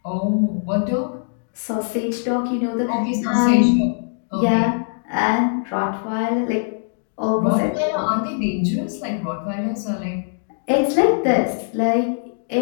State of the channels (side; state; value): right; silent; 65 dB below the other